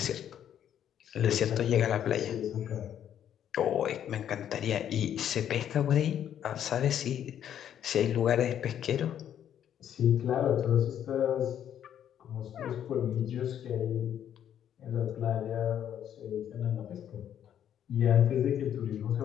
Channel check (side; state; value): right; quieter; 9.9 dB